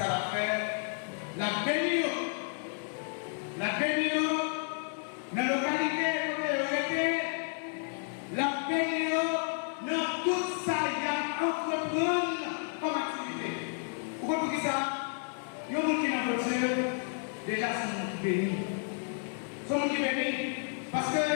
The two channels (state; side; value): silent; right; 57 dB below the other